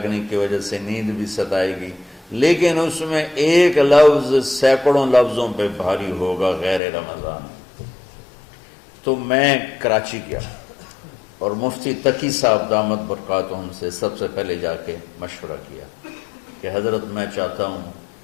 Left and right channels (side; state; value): right; drops out; at 6.8 s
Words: کی وجہ سے نیند بھی ستائے گی، لیکن اس میں ایک لفظ سینکڑوں لفظوں پہ بھاری ہوگا غیر رمضان۔ تو میں کراچی گیا اور مفتی تقی صاحب دامت برکاتہم سے سب سے پہلے جا کے مشورہ کیا کہ حضرت میں چاہتا ہوں